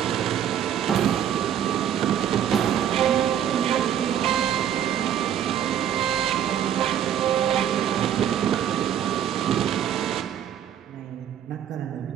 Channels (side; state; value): left; quieter; 9.9 dB